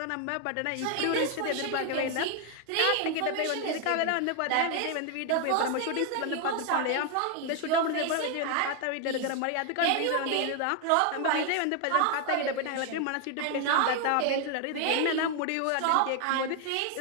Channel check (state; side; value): different; both; correlation 0.00